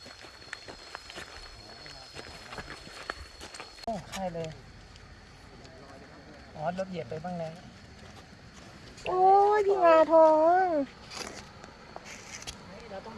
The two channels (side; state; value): both; identical; correlation 1.00